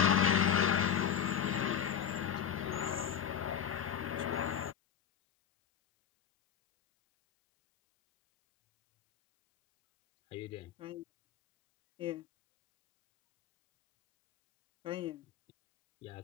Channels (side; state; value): right; quieter; 8.7 dB